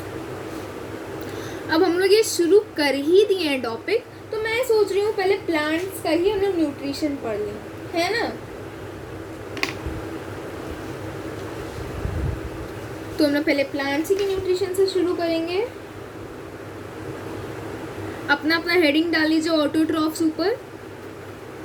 अब हम लोग ये शुरू कर ही दिए हैं टॉपिक, तो मैं सोच रही हूँ पहले प्लांट्स का ही हम लोग न्यूट्रिशन पढ़ लें, है ना। तो हम लोग पहले प्लांट्स की न्यूट्रिशन से शुरू करेंगे। अपना अपना हेडिंग डाल लीजिए ऑटोट्रॉफ्स ऊपर।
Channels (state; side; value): identical; both; correlation 1.00